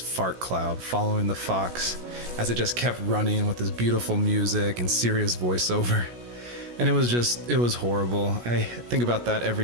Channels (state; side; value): late; left; 17 ms